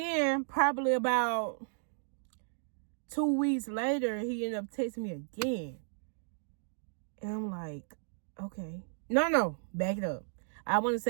probably about 2 weeks later, he ended up texting me again. And I'm like, okay. No, back it up. I want to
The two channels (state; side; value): silent; left; digital silence